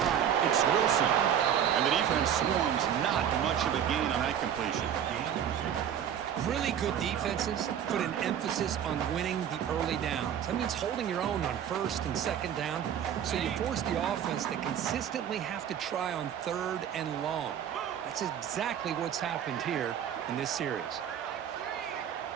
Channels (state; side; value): quieter; left; 9.3 dB